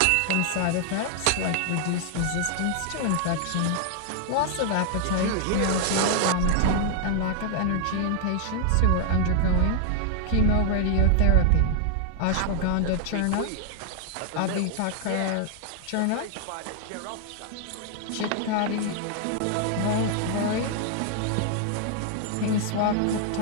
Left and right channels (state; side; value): different; both; correlation 0.00